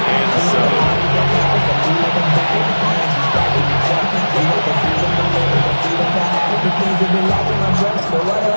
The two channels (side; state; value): both; inverted; correlation -1.00